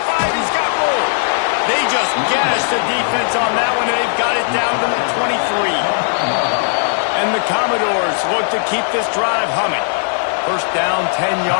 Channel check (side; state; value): right; silent; digital silence